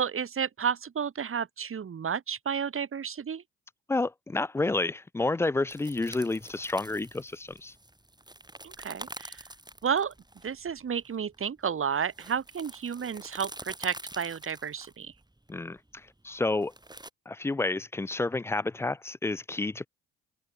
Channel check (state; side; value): normal; both; correlation 0.31